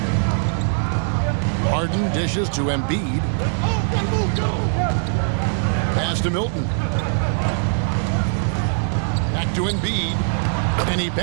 Harden dishes to Embiid. Pass to Milton. Back to Embiid. And he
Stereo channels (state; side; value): silent; left; 64 dB below the other